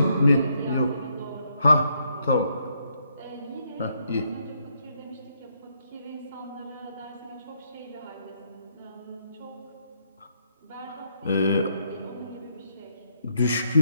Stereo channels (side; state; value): both; inverted; correlation -0.75